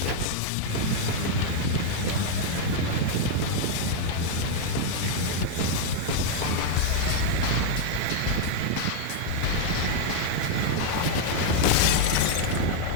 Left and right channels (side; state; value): both; different; correlation -0.01